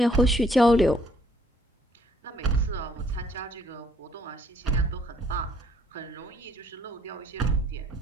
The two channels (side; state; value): both; normal; correlation 0.65